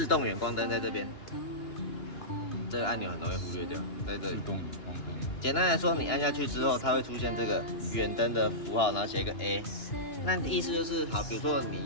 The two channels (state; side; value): late; right; 2.9 ms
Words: 动远光灯在这边。这个按钮很容易忽略掉，在这里。简单来说，你按下去之后，它会出现这个远灯的符号，然后写一个 A。那意思就是，好，比如说你